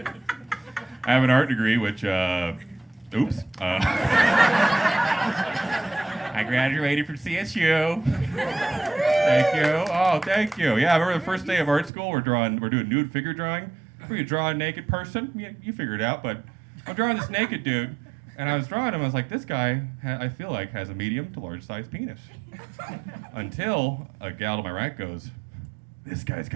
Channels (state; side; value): drops out; left; at 11.9 s